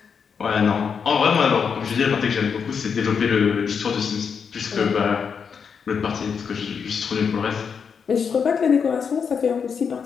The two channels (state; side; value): quieter; right; 6.4 dB